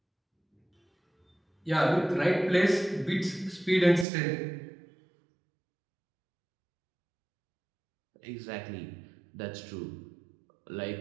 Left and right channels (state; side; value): drops out; left; at 4.0 s